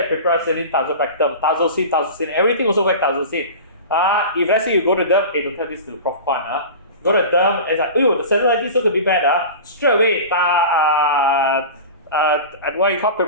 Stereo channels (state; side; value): inverted; both; correlation -0.32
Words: Piperacillin, tazobactam, tazocine, everything also works tazocine. If let's say you go to them, don't tell this to the Prof. Kwan, go to them and it's like, the cellulitis is going to be bad. Straight away, what you call